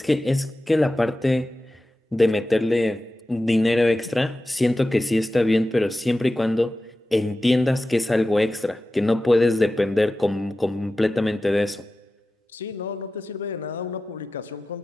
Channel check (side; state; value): both; normal; correlation 0.94